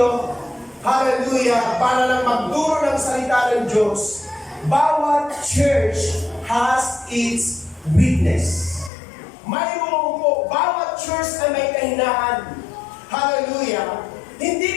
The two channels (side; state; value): right; drops out; at 8.9 s